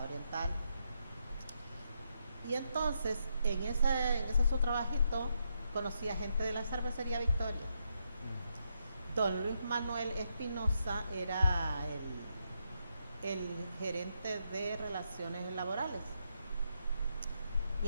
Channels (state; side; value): inverted; both; correlation -0.81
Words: Oriental. Y entonces, en ese su trabajito, conocí a gente de la cervecería Victoria. Don Luis Manuel Espinosa era el gerente de relaciones laborales.